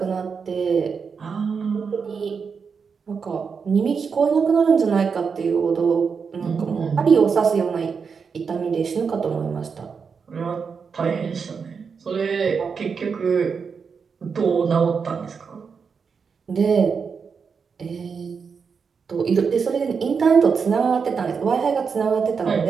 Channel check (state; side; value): quieter; left; 5.8 dB